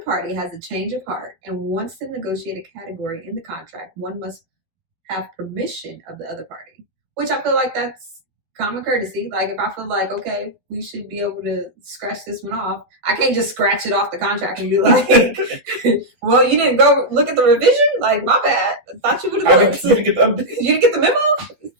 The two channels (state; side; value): late; left; 12 ms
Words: party has a change of heart and wants to negotiate a category in the contract, one must have permission of the other party, which I feel like that's common courtesy. Like if I feel like, okay, we should be able to scratch this one off, I can't just scratch it off the contract and be like, well, you didn't go look at the revision? Like, my bad. I thought you would have looked. You didn't get the update? You didn't get the memo? You